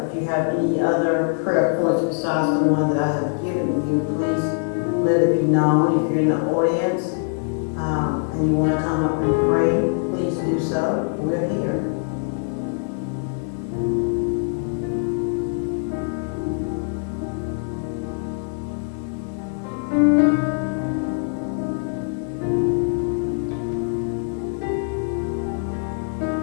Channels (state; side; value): silent; right; 57 dB below the other